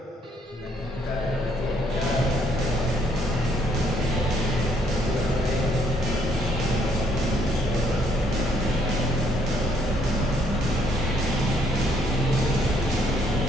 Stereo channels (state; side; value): normal; both; correlation 0.69